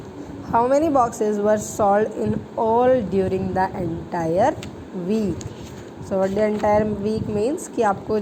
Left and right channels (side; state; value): both; identical; correlation 1.00